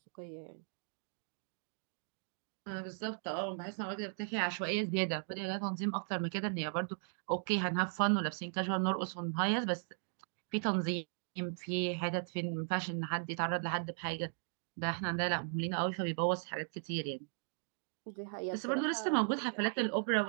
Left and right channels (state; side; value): silent; left; digital silence